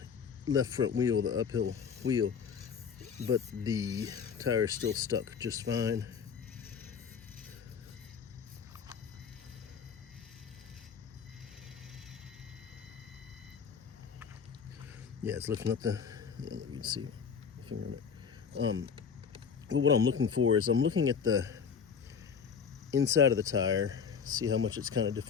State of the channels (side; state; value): right; quieter; 6.6 dB